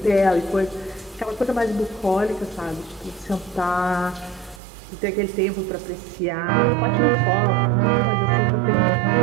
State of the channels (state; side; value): drops out; left; at 4.6 s